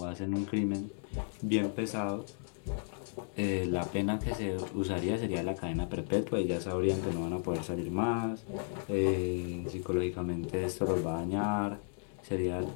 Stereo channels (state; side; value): silent; right; 55 dB below the other